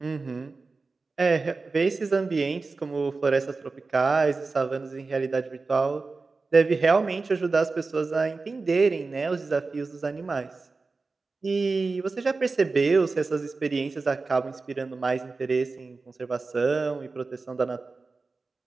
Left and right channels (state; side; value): quieter; left; 4.0 dB